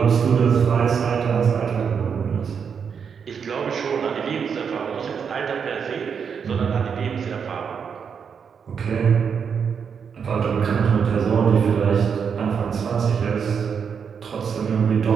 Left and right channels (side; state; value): left; quieter; 6.7 dB